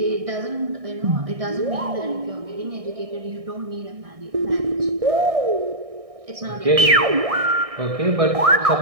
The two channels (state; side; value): late; left; 1.6 ms